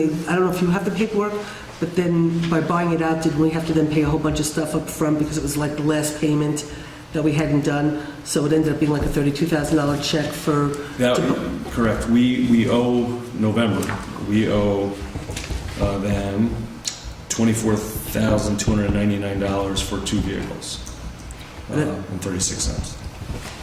I don't know if you have the paperwork, but then by buying it out, did we have to then pay a whole bunch of stuff up front because it was like the last payment that we hadn't done? So it ended up being like a $32,000 check for... That, correct. We owe November. We owe them $24,299 for 2 vehicles and 36 cents.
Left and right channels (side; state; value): both; identical; correlation 1.00